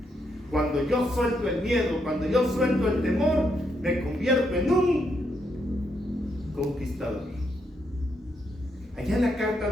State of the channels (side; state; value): both; normal; correlation 0.78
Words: Cuando yo suelto el miedo, cuando yo suelto el temor, me convierto en un conquistador. Allá en la carta